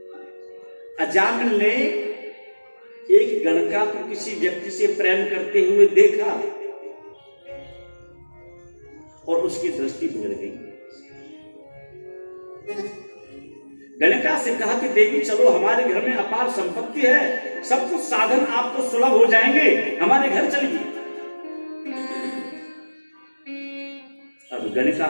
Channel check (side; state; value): both; inverted; correlation -1.00